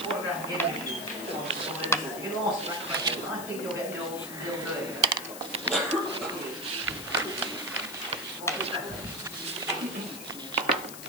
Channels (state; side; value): noise; left; hiss, 11 dB below the sound